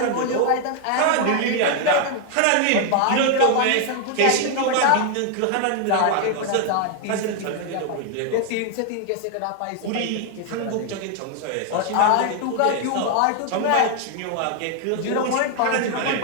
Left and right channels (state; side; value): different; both; correlation 0.00